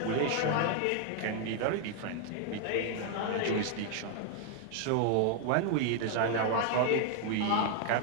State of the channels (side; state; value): both; different; correlation 0.00